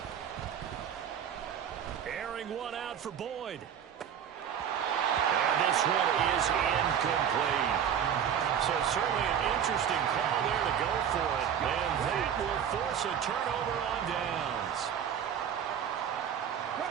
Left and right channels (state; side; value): quieter; left; 8.7 dB